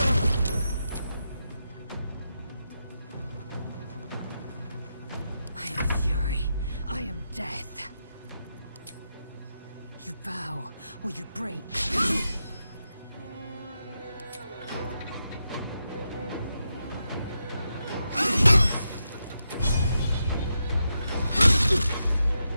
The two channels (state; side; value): inverted; both; correlation -0.86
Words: am fury. I am death. You bow, or you break.